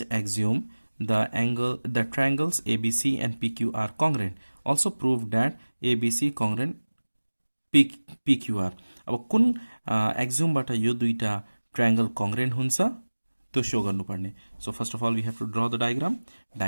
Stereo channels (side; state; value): both; inverted; correlation -1.00